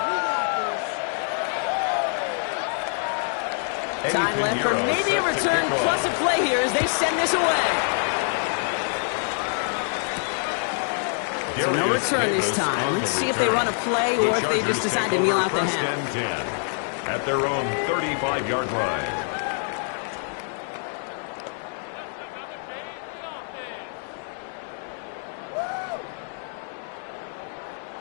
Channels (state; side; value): silent; right; 56 dB below the other